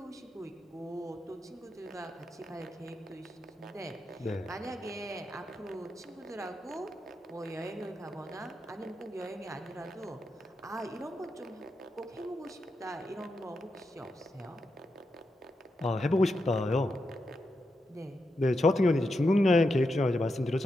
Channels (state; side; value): normal; both; correlation 0.86